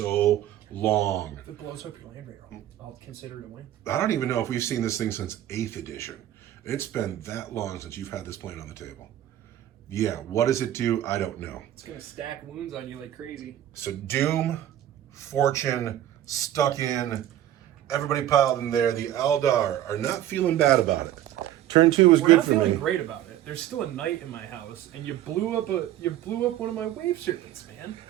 long. If it blows up your land raider, I'll consider it a win. I don't even know if we've seen this thing since 8th edition. It's been that long since you've had this plane on the table. Yeah, what does it do? I don't know. It's going to stack wounds on you like crazy. So Doom, Fortune, stuck in, everybody piled in there. The Eldar are not feeling bad about it. Turn 2 was good for me. We're not feeling great about it. There's still a knight in my house, and you blew up one of my wave serpents, man.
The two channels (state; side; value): quieter; left; 12.4 dB